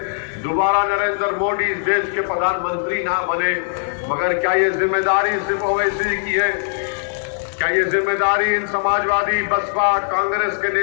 दोबारा नरेंद्र मोदी इस देश के प्रधानमंत्री ना बने। मगर क्या ये जिम्मेदारी सिर्फ ओवैसी की है? क्या ये जिम्मेदारी इन समाजवादी, बसपा, कांग्रेस के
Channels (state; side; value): silent; right; digital silence